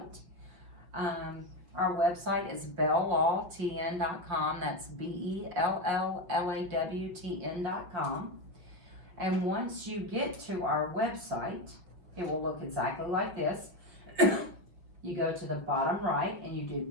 Our website is belllawtn.com. That's BELLLAWTN.com. And once you get to our website, it will look exactly like this. You go to the bottom right and you do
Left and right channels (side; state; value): left; late; 5.8 ms